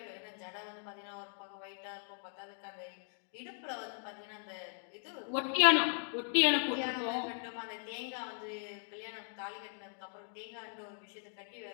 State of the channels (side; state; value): right; silent; 52 dB below the other